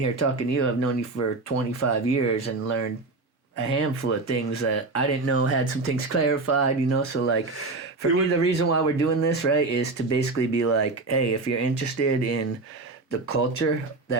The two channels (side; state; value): left; quieter; 3.4 dB